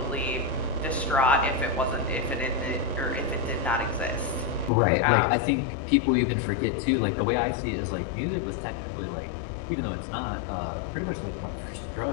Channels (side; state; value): right; drops out; at 4.7 s